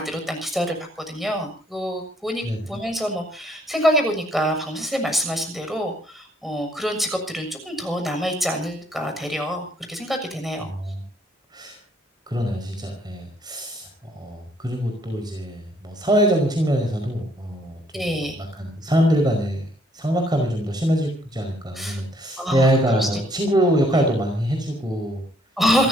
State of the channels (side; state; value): both; normal; correlation 0.66